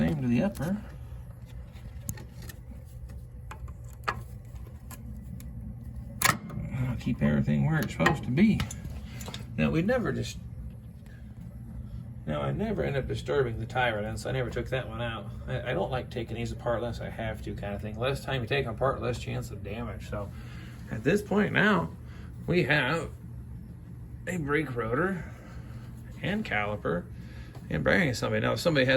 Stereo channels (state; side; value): identical; both; correlation 1.00